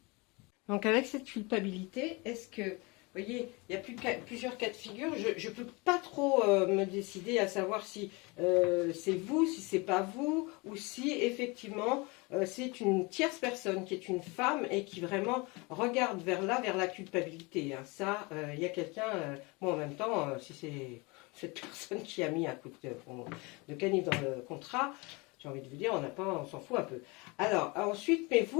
Donc avec cette culpabilité, est-ce que, vous voyez, il y a plusieurs cas de figure, je ne peux pas trop me décider à savoir si c'est vous, si c'est pas vous, ou si effectivement c'est une tierce personne qui est une femme et qui vraiment regarde vers la culpabilité. Hein. Ça, il y a quelqu'un, moi en même temps, si c'est cette personne qui a mis un coup de canif dans le contrat, j'ai envie de vous dire, on s'en fout un peu. Alors, ensuite, mais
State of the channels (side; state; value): right; quieter; 26.9 dB